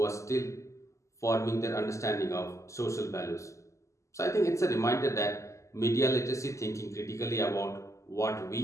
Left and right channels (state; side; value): late; right; 0.15 ms